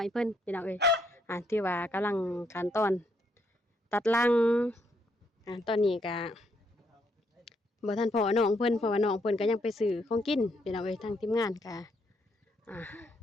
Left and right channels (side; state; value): both; normal; correlation 0.74